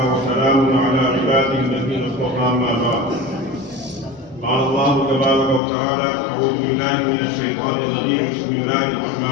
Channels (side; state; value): right; drops out; at 5.6 s